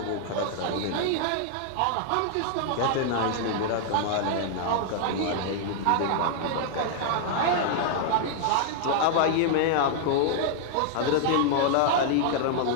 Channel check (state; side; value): different; both; correlation -0.01